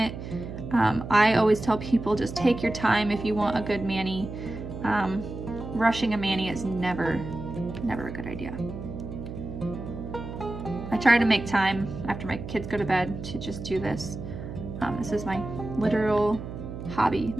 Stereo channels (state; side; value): noise; right; hum, 9 dB below the sound